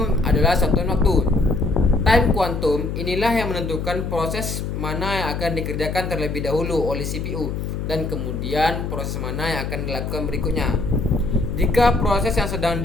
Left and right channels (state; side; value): noise; left; hum, 4 dB below the sound